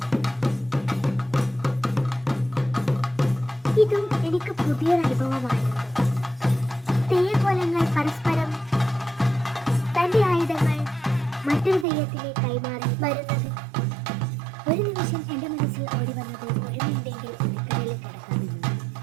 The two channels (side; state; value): left; drops out; at 11.9 s